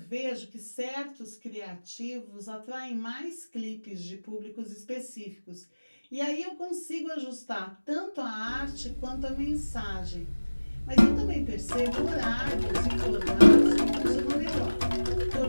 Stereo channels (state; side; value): inverted; both; correlation -1.00